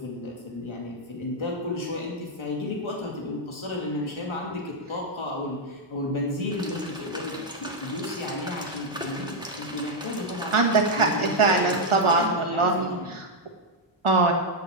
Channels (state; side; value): normal; both; correlation -0.01